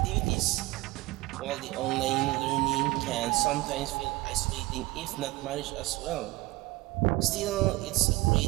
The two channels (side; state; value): left; quieter; 20.0 dB